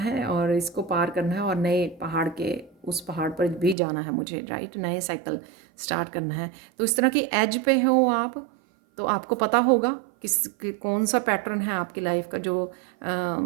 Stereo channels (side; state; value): left; drops out; at 3.8 s